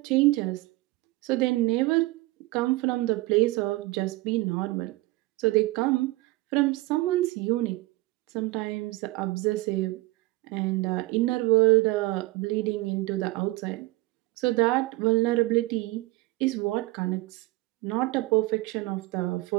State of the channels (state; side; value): quieter; left; 20.2 dB